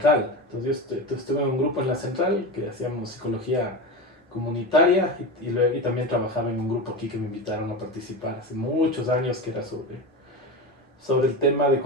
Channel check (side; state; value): both; normal; correlation 0.23